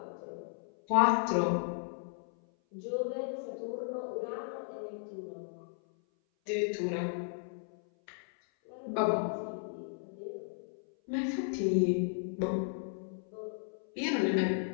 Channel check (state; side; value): silent; right; 54 dB below the other